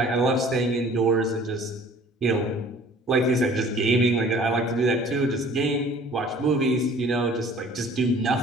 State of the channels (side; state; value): both; normal; correlation 0.51